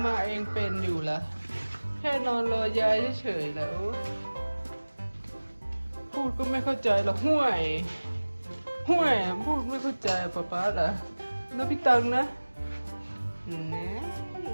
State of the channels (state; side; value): inverted; both; correlation -1.00